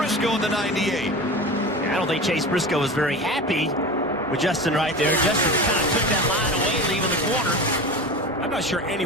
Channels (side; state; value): both; normal; correlation 0.30